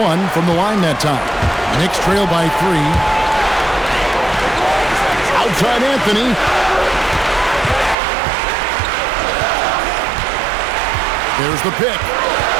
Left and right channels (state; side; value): drops out; left; at 8.0 s